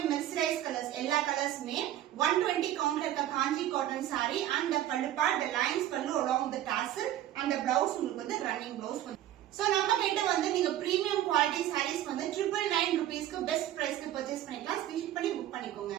மெஸ்ரைஸ் கலர்ஸ். எல்லா கலர்ஸ்மே 120 கவுண்ட்ல இருக்க காஞ்சி காட்டன் சாரி அண்ட் பல்லு பார்ட், the lines பல்லு along the tassel and the blouse உங்களுக்கு வந்து ரன்னிங் பிளவுஸ் வரும். சோ நம்ம கிட்ட வந்து நீங்க பிரீமியம் குவாலிட்டி சாரீஸ் வந்து 999 rupeesக்கு பெஸ்ட் பிரைஸ்க்கு பர்ச்சேஸ் பண்ணிக்கலாம். ஸ்கிரீன்ஷாட் பண்ணி புக் பண்ணிக்கோங்க.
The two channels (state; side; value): quieter; left; 12.7 dB